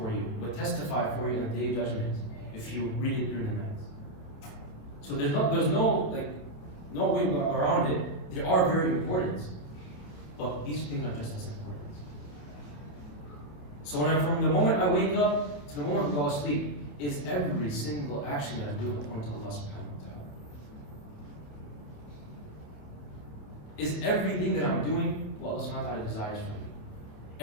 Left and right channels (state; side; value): late; right; 28 ms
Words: you, will testify for you on the day of judgment if you read it during the night. So there's no way around it. They are very important, but these things are just as important. So from the moment I wake up to the moment I go to sleep, is every single action that I do according to Allah subhanahu wa ta'ala. Is everything that I'm doing what Allah subhanahu wa ta'ala desires from me.